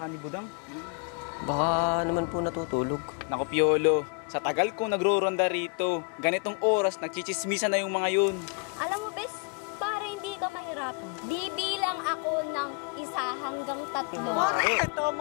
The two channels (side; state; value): right; quieter; 35.9 dB